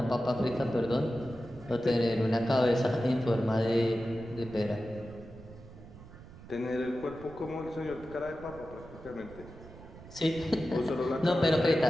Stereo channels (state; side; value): noise; right; rumble, 18 dB below the sound